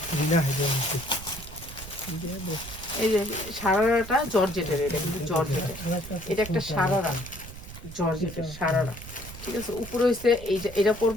দিনা হেজে এই যে সারারাটা জর্জেটের এটা কিন্তু জর্জেটের এটা একটা সারারা জর্জেটের সারারা ঠিক আছে উপরে হচ্ছে এটা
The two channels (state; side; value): noise; right; rumble, 13 dB below the sound